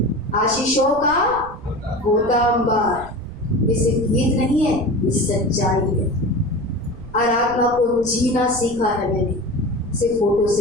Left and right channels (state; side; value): noise; right; rumble, 15 dB below the sound